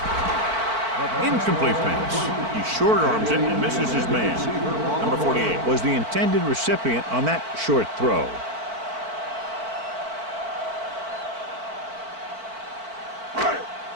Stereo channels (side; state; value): left; late; 4.5 ms